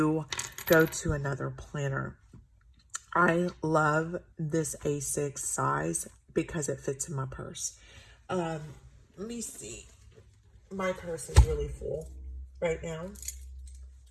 go to another planner. I love this A6 size because it fits in my purse. Let me see. My purse is really full right now.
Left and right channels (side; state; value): both; identical; correlation 1.00